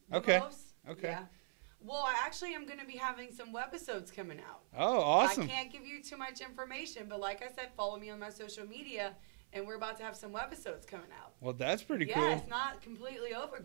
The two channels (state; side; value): silent; left; 50 dB below the other